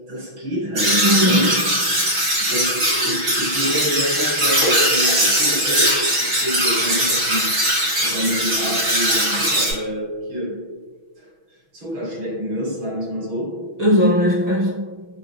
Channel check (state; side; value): late; left; 6.1 ms